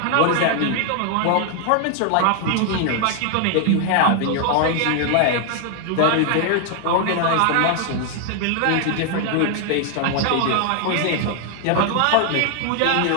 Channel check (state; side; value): different; both; correlation 0.00